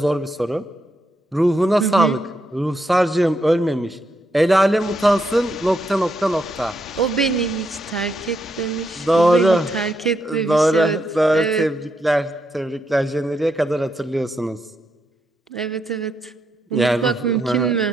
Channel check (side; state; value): both; normal; correlation 0.80